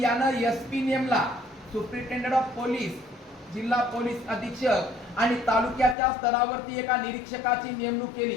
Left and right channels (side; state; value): right; drops out; at 6.0 s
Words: यानं एसपी नेमला, सुप्रिंटेंडेंट ऑफ पोलीस, जिल्हा पोलीस अधीक्षक. आणि तालुक्याच्या स्तरावरती एका निरीक्षकाची नेमणूक